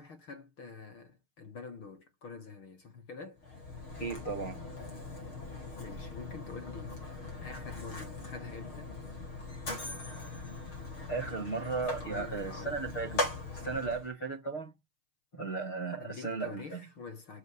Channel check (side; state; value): right; late; 6.5 ms